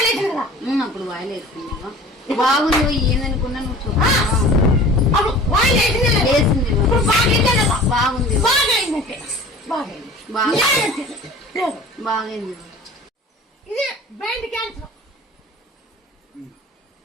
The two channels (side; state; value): both; normal; correlation 0.43